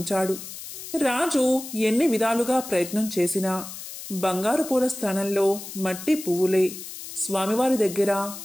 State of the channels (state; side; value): noise; left; hiss, 11 dB below the sound